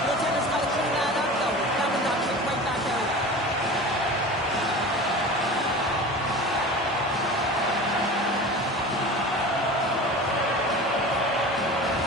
Goaltender's got to clean that up, though. That one got kicked right back out.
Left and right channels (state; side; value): normal; both; correlation 0.35